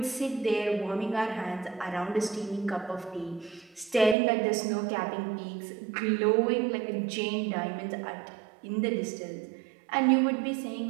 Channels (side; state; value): left; drops out; at 4.2 s